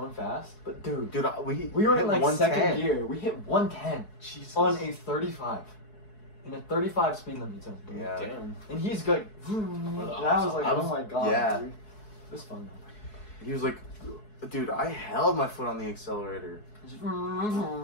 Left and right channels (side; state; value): right; late; 4.7 ms